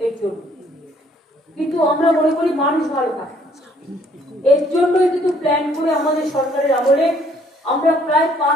এর জন্য। কিন্তু আমরা মনে করি মানুষ ভালো থাকে, এর জন্যই কিন্তু প্ল্যান করে আমাদের সরকারের আমলে আমরা প্রায়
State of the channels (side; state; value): both; normal; correlation 0.63